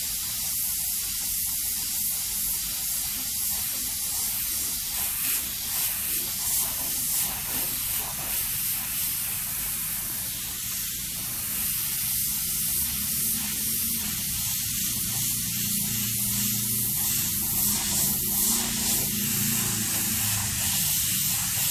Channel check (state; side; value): identical; both; correlation 1.00